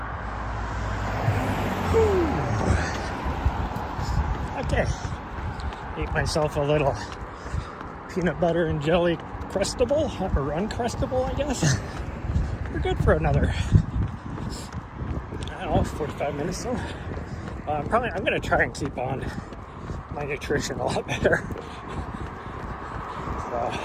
Whew. Okay, ate myself a little peanut butter and jelly crustable, or uncrustable, I guess. We're good for another, I don't know, 45 minutes so. I'm going to try and keep on my nutrition a lot better. So,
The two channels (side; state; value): both; identical; correlation 1.00